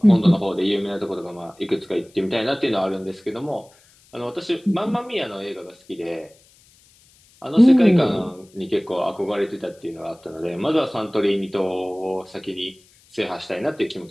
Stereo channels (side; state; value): left; noise; hiss, 29 dB below the sound